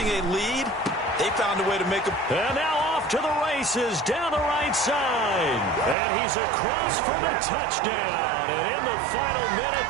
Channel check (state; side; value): drops out; left; at 6.0 s